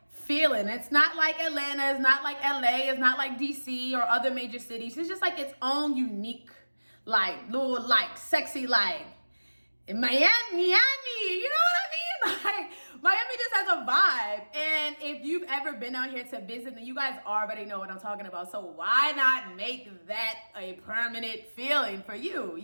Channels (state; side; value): inverted; both; correlation -1.00